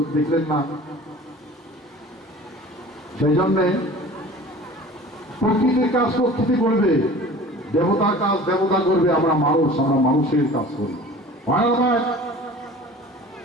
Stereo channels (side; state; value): both; normal; correlation 0.43